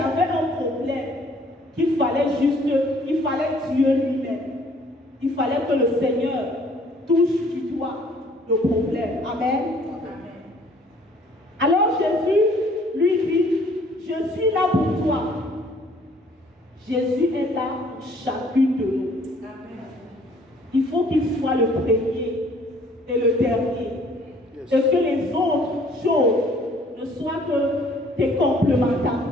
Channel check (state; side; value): normal; both; correlation 0.58